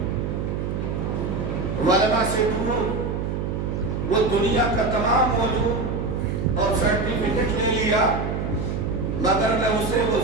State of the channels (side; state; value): right; noise; hum, 2 dB below the sound